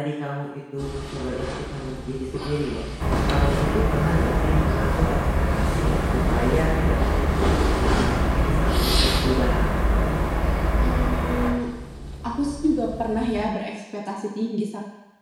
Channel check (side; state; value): both; identical; correlation 1.00